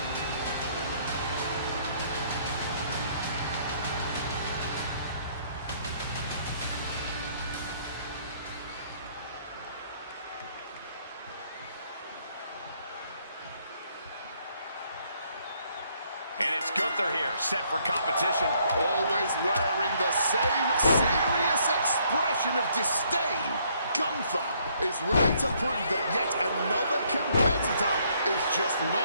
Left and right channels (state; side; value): inverted; both; correlation -0.67